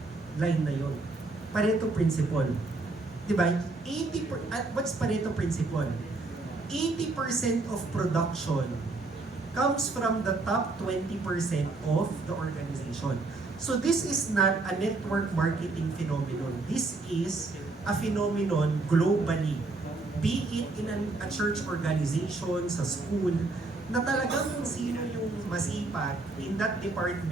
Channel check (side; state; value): left; quieter; 3.4 dB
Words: line na yon. Pareto principle. Diba? What's Pareto principle? 80% of production comes from the top 20% of the organization. So this is not a network marketing phenomenon. This is a phenomenon globally. Be it in a church organization, sa school, na talagang kung sino yung masipag in that